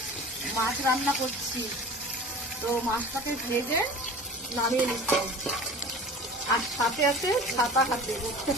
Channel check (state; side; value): normal; both; correlation 0.39